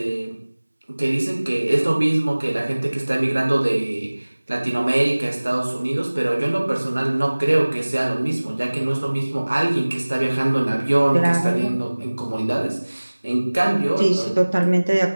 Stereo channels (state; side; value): inverted; both; correlation -1.00